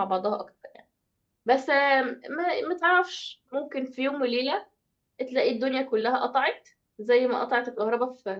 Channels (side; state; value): both; identical; correlation 1.00